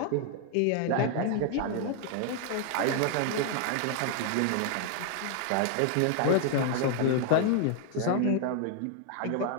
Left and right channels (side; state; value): both; different; correlation 0.00